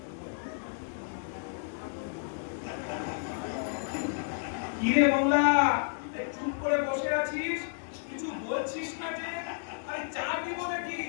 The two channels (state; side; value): silent; right; digital silence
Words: কিরে বাংলা, চুপ করে বসে আছিস, কিছু বলছিস না যে? আরে চা দিব নাকি?